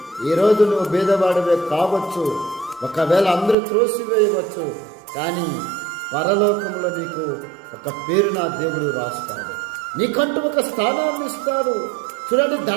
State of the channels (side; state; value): left; drops out; at 3.6 s